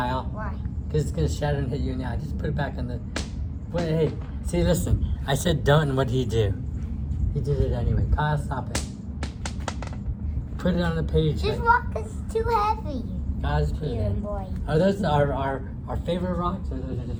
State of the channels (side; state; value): both; identical; correlation 1.00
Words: Why? Because it's going to shatter and hit you now. Just put it back on the... Wait, hey, see, listen. I said don't, and what did he do? He did it anyway. Kyle, stop it. Put it on the page. This rock is too heavy. Kyle, just put it Here, in. boy. Are those our favorite rocks, or those are